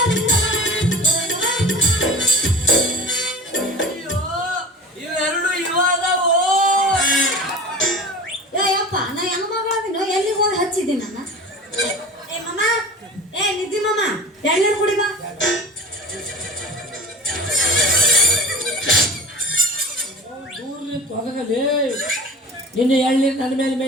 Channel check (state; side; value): normal; both; correlation 0.37